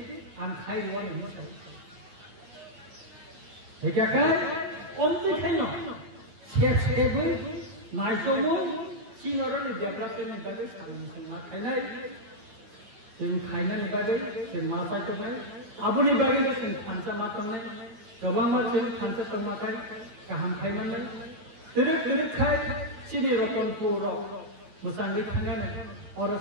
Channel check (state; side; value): late; left; 9.3 ms